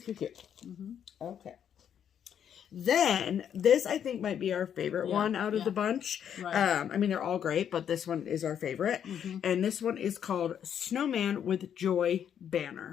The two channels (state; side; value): quieter; right; 8.8 dB